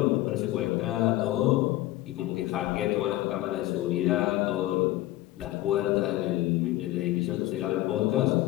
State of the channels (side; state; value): right; quieter; 16.1 dB